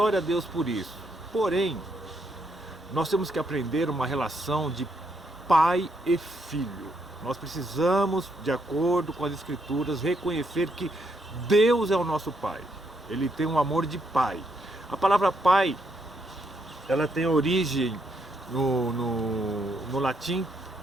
a Deus por isso. Porém, nós temos que aprender uma relação de pai e filho. Nós precisamos, de acordo com as Escrituras, reconhecer que Deus é o nosso pai. Ele tem um amor de pai. A palavra pai, ela tem origem no latim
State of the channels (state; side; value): normal; both; correlation 0.76